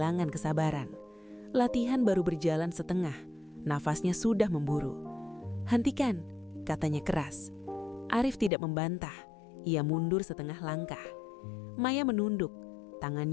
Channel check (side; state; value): right; drops out; at 8.5 s